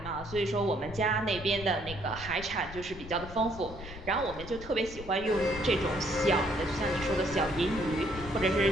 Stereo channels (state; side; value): noise; left; rumble, 13 dB below the sound